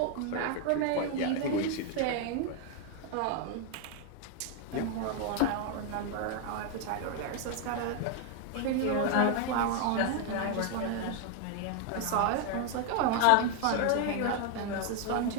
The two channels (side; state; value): both; different; correlation 0.01